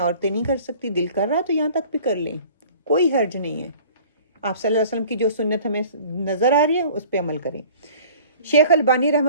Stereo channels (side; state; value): both; inverted; correlation -0.48